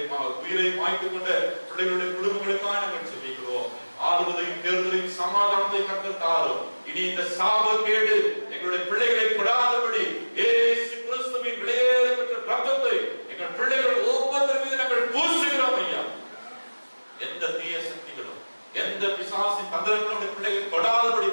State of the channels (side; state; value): both; inverted; correlation -1.00